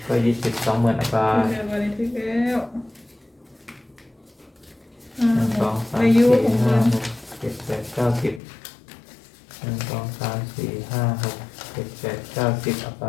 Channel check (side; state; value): right; drops out; at 8.4 s